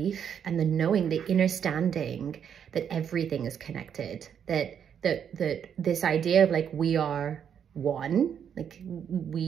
and the knowing, the understanding that everything is connected, that this idea of like we are one, like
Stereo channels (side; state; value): left; quieter; 8.2 dB